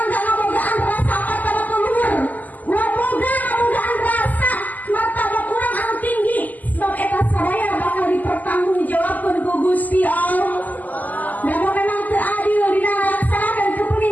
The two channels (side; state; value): right; late; 0.081 ms